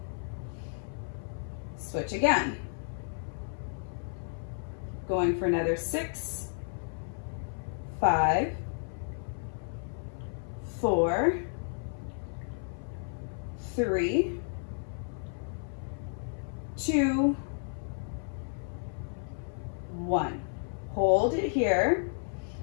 Switch again. Going for another 6, 5, 4, 3, 2, 1. Hold it here.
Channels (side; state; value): right; silent; 56 dB below the other